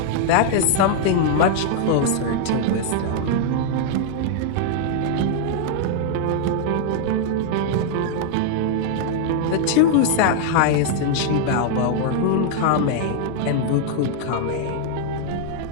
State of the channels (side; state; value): both; different; correlation 0.00